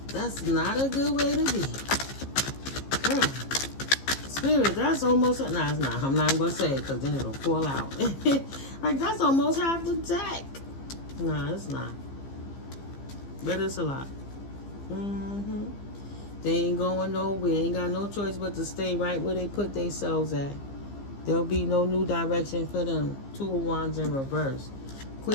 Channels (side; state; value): right; late; 15 ms